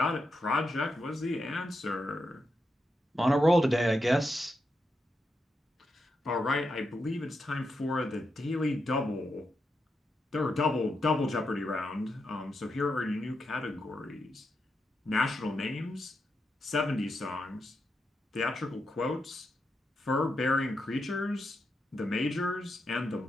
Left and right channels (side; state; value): both; normal; correlation 0.85